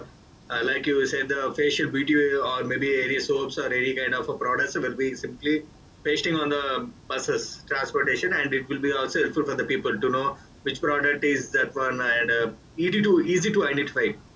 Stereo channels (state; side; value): identical; both; correlation 1.00